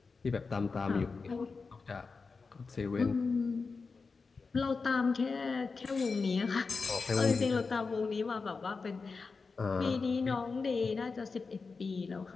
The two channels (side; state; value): right; quieter; 4.5 dB